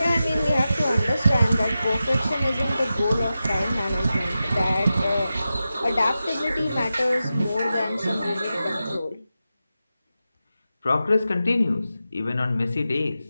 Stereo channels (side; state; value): both; inverted; correlation -0.92